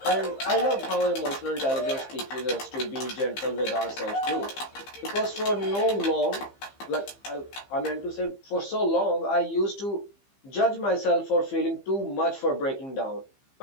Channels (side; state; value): right; late; 15 ms